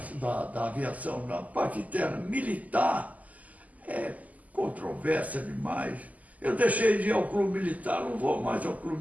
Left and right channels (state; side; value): late; left; 0.076 ms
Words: aviação, na parte interna militar, é controvérsia demais. Eu deixei de ir ao clube militar, não vou mais ao